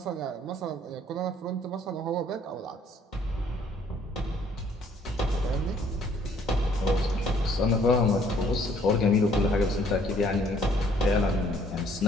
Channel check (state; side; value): normal; both; correlation 0.62